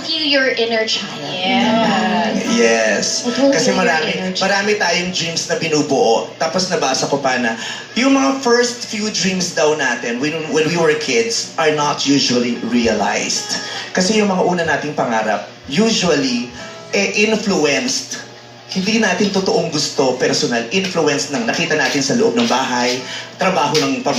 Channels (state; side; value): identical; both; correlation 1.00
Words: heal your inner child. Yes. Kasi marami tayong dreams na binubuo. Tapos nabasa ko pa na yung mga first few dreams daw natin when we were kids are not usually realized. Kasi yung mga una nating pangarap usually influenced. Hindi natin totoong gusto, personal, influence ng nakita natin sa loob ng bahay, trabaho ng